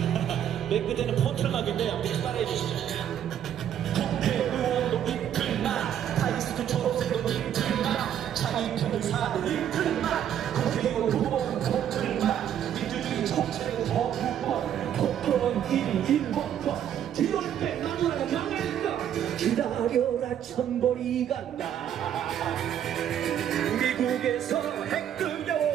맨 끝에는 폰틀막인데 아무튼 따라해 주시죠 국회의원도 이틀막 타이스트 초록색도 이틀막 자기 변호사도 이틀막 국회의원 두번 폰틀막 민주주의 정책의 거부권 폭언 1번권 뒤를 빼나무라 명예인가 기다려라 천벌이 간다 미국에서 핵들려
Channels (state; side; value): quieter; left; 10.0 dB